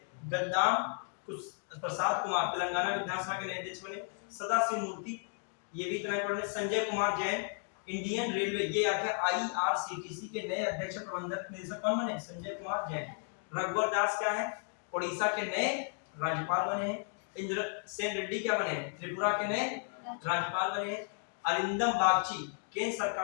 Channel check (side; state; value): right; silent; 55 dB below the other